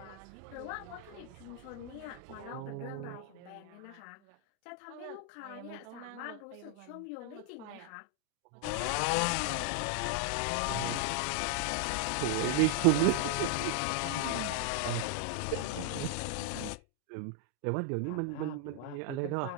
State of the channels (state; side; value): different; both; correlation 0.00